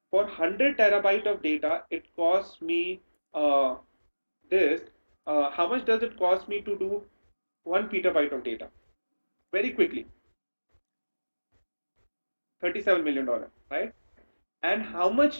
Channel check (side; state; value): both; inverted; correlation -1.00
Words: For 100 terabyte of data, it costs me this. How much does it cost me to do 1 petabyte of data? Very quickly, $37 million, right? And how